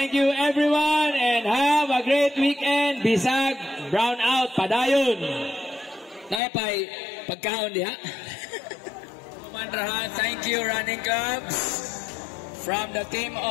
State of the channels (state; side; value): drops out; right; at 6.4 s